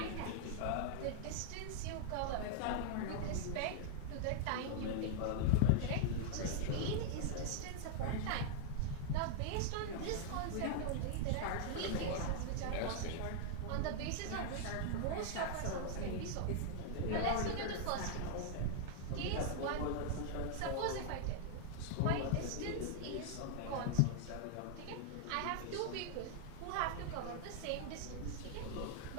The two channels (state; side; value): different; both; correlation -0.01